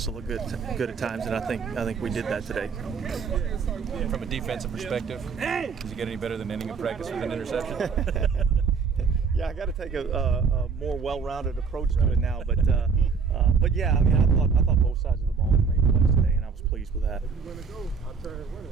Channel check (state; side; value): quieter; left; 5.6 dB